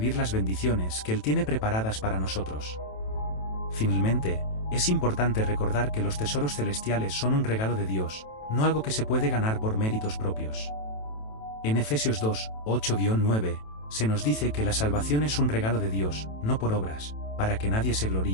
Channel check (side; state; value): right; late; 27 ms